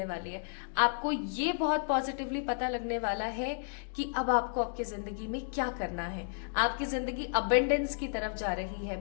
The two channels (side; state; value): right; silent; digital silence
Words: वाली है. आपको ये बहुत पॉजिटिवली पता लगने वाला है कि अब आपको आपकी जिंदगी में क्या करना है. आपकी जिंदगी अबेंडेंस की तरफ जा रही है,